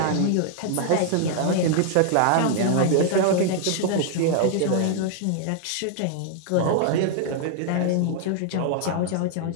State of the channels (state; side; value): different; both; correlation 0.00